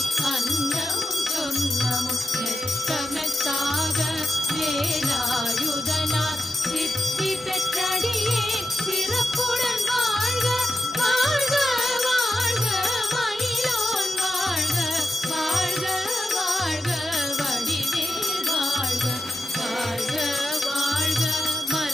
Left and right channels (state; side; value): normal; both; correlation 0.89